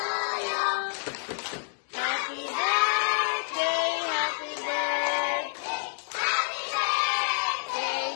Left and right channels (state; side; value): silent; right; digital silence